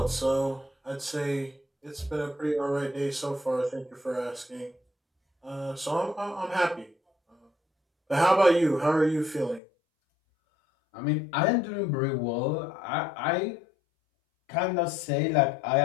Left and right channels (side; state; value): right; drops out; at 9.6 s